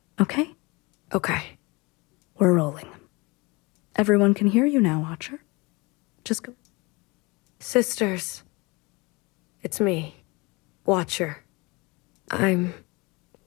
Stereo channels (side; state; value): right; quieter; 25.8 dB